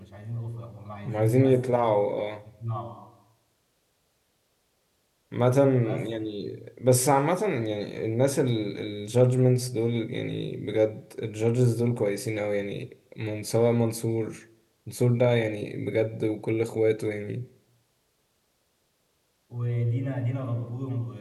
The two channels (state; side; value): identical; both; correlation 1.00